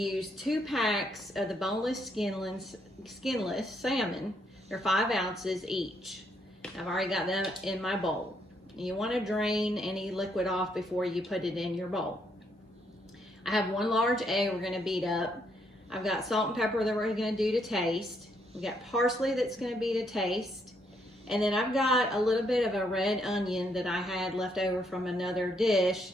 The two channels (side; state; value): both; normal; correlation 0.74